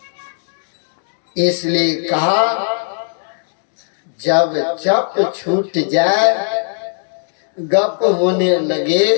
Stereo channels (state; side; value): silent; right; digital silence